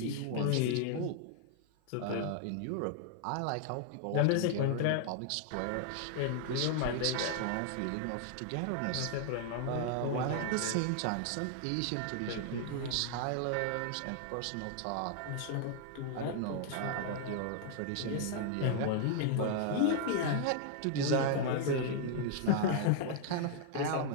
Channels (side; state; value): both; different; correlation 0.00